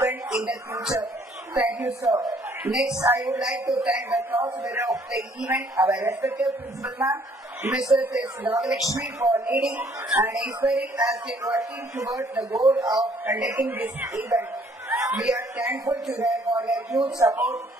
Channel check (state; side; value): normal; both; correlation 0.62